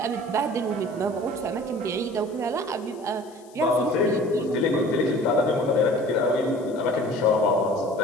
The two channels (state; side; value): noise; left; hiss, 27 dB below the sound